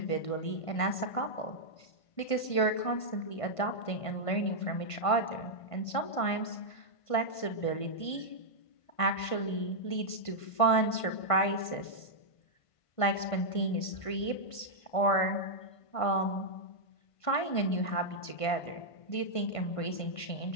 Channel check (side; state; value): right; late; 1.5 ms